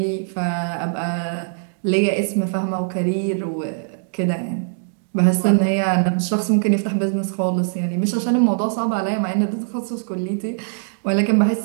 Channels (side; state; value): left; silent; digital silence